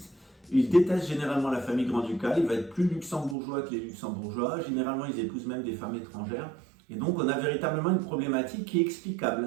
Ils détestent généralement la famille grand-ducale. Ils vont être plus luxembourgeois que les luxembourgeois. Généralement, ils épousent même des femmes étrangères. Et donc, on a véritablement une problématique qui est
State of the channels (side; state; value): left; drops out; at 3.4 s